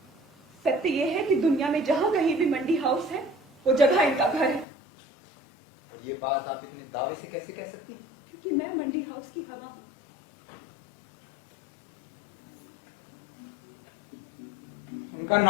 सत्य ये है कि दुनिया में जहां कहीं भी मंडी हाउस है वो जगह इनका घर है। और ये बात आप इतने दावे से कैसे कह सकती हैं? क्योंकि मैं मंडी हाउस की हवा हूं। उनका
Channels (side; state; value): right; drops out; at 4.7 s